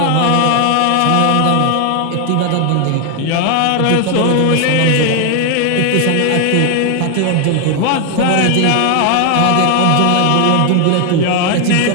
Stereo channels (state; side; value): different; both; correlation 0.01